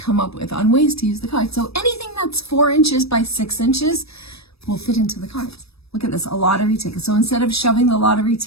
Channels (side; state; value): right; late; 0.78 ms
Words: up with on ways to use the card. So anything that's 4 inches by 6 inches will fit into the cards. Look at this, a lottery ticket. So instead of shoving the lottery